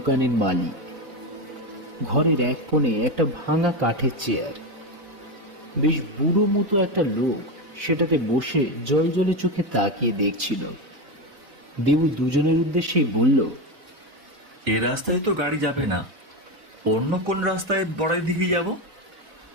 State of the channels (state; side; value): late; left; 4.0 ms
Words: মালিক। ঘরের এক কোণে একটা ভাঙা কাঠের চেয়ার। বেশ বুড়ো মতো একটা লোক সেটাতে বসে জল জলে চোখে তাকিয়ে দেখছিল। দেবু দুজনের উদ্দেশ্যেই বলল, এ রাস্তায় তো গাড়ি যাবে না, অন্য কোন রাস্তায় বড়াই দিকে যাব?